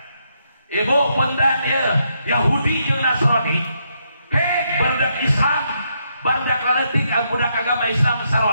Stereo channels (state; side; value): inverted; both; correlation -0.77